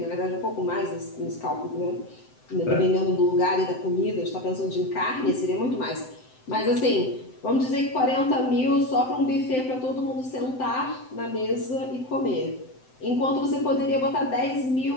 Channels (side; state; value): right; late; 7.8 ms